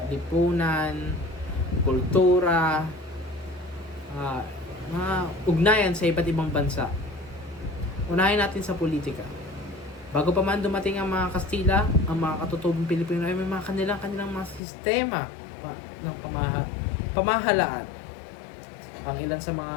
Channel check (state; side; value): drops out; right; at 14.6 s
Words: lipunan, kultura, mga ugnayan sa iba't ibang bansa. Unahin natin sa politika. Bago pa man dumating ang mga Kastila, ang mga katutubong Pilipino ay may mga kanilang mga sistema ng pamahalaan. Ang ilan sa mga